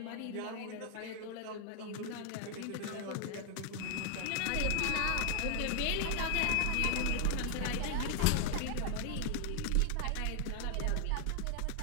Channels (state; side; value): different; both; correlation 0.00